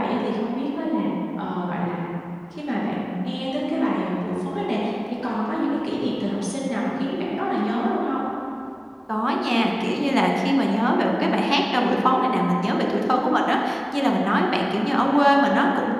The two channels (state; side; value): identical; both; correlation 1.00